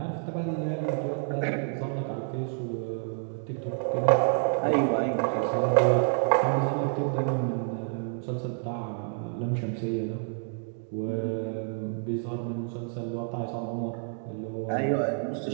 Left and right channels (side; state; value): left; silent; 59 dB below the other